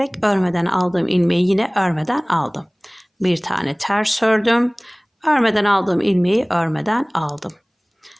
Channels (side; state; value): both; identical; correlation 1.00